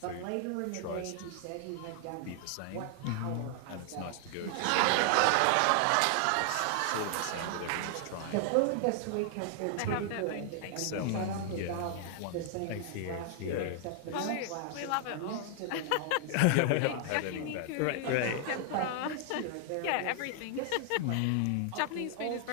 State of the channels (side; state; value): both; different; correlation 0.00